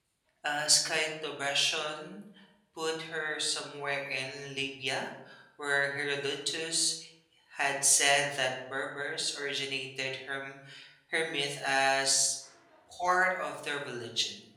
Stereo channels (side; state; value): both; identical; correlation 1.00